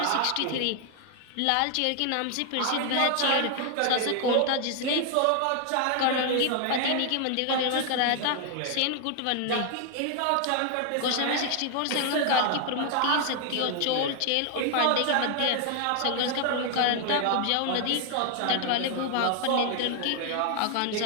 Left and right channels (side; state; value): both; different; correlation 0.00